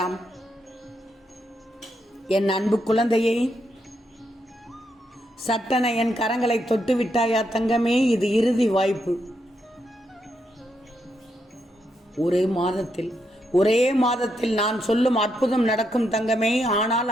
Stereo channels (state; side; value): normal; both; correlation 0.80